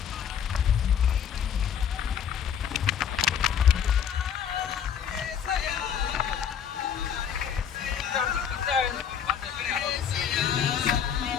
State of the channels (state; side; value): quieter; right; 8.4 dB